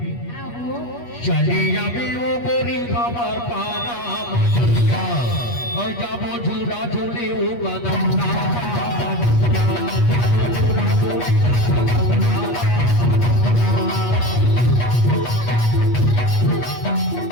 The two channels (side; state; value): right; late; 8.4 ms